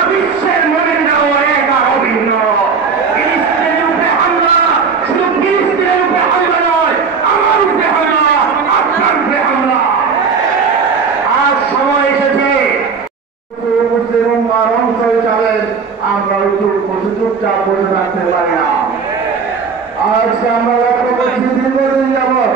বিশ্বের মোমেনরাও এক আর অভিন্ন। ফিলিস্তিনের উপরে হামলা শুধু ফিলিস্তিনের উপরে হামলা নয়, আমার উপরে হামলা, আপনার উপরে হামলা। আজ সময় এসেছে মুসলিম উম্মাহর অংশ হিসাবে আমরা চুপচাপ বসে থাকতে পারি না। আজকে আমরা লক্ষ্য করছি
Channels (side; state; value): left; quieter; 5.5 dB